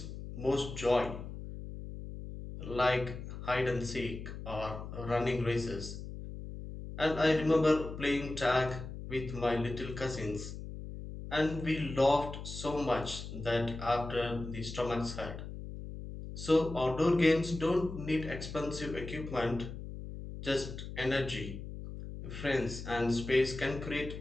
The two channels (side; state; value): left; noise; hum, 9 dB below the sound